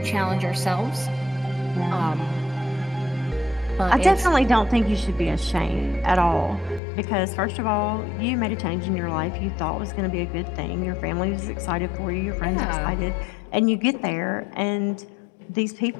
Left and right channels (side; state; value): right; drops out; at 6.8 s